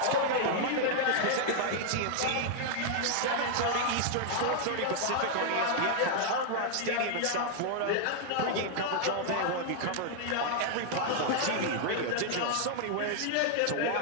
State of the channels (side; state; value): both; different; correlation 0.00